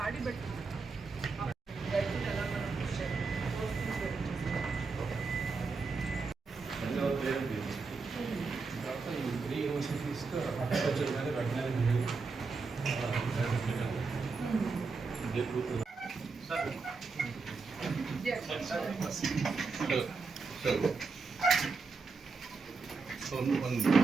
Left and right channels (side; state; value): left; quieter; 4.4 dB